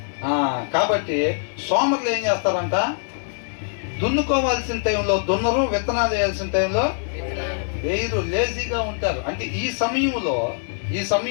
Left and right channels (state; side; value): silent; right; digital silence